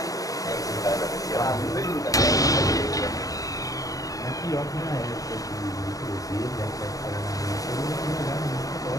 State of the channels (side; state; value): right; late; 0.17 ms